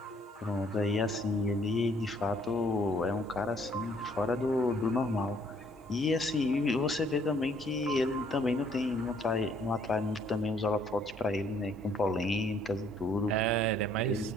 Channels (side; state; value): both; normal; correlation 0.63